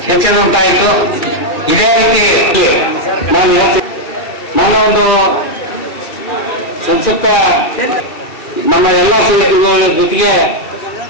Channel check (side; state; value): right; late; 2.4 ms